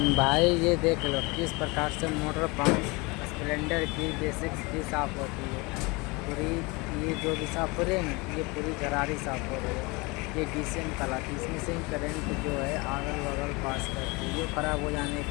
ये देख लो किस प्रकार से मोटर पंप स्प्लेंडर की बेसिक्स की साफ़ होती है पूरी। ये जो भी साफ़ हो रही है ना, ये पूरी गरारी साफ़ हो रही है। ये डीसीएम कहलाती है। इसमें से ही करंट जो है अगल बगल पास करती है। ये ख़राब हो जाने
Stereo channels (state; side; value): quieter; right; 26.2 dB